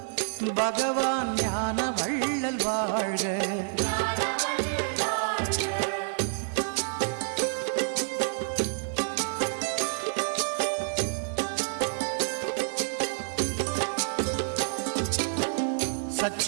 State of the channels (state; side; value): silent; left; 59 dB below the other